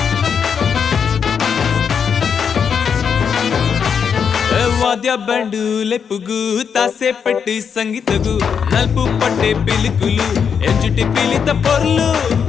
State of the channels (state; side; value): quieter; right; 6.9 dB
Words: వాద్య బ్యాండు లెప్పుగు తాసే పెట్టి సంగీతగు నలుపు పట్టే పిలుకులు ఎంచుటి పిలిత పొర్లు